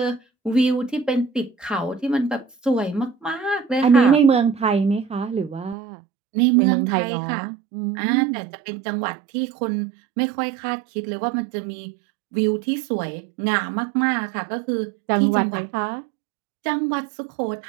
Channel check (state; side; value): drops out; left; at 5.8 s